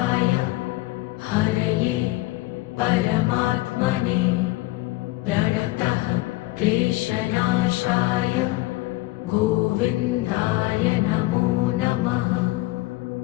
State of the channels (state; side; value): quieter; right; 19.8 dB